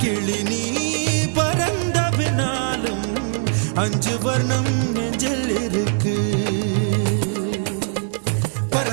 கிளி நீ பறந்த பின்னாலும் 5 வர்ணம் நெஞ்சில் இருக்கு.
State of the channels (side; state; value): left; silent; digital silence